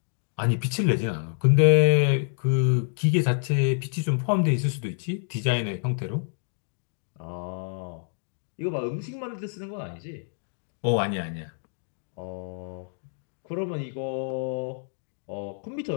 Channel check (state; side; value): silent; right; digital silence